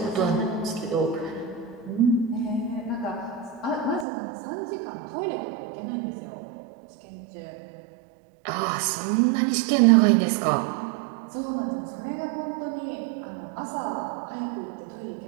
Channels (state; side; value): drops out; left; at 4.0 s